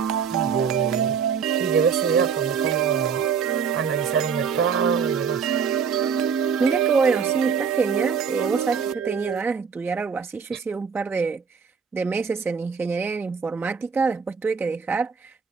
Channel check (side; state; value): left; quieter; 6.5 dB